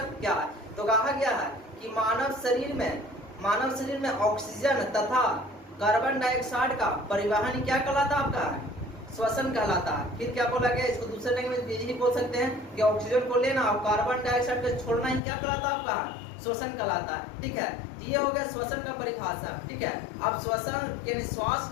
क्या है। तो कहा गया है कि मानव शरीर में ऑक्सीजन तथा कार्बन डाइऑक्साइड का परिवहन क्या कहलाता है आपका श्वसन कहलाता है। फिर क्या बोला गया, इसको दूसरे लैंग्वेज में यही बोल सकते हैं कि ऑक्सीजन को लेना और कार्बन डाइऑक्साइड को छोड़ना ही क्या कहलाता है आपका श्वसन कहलाता है, ठीक है। ये हो गया श्वसन का परिभाषा, ठीक है। अब श्वसन यानी श्वास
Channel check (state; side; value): drops out; right; at 15.2 s